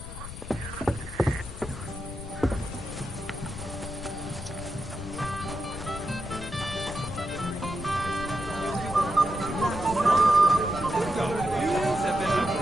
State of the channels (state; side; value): noise; left; rumble, 10 dB below the sound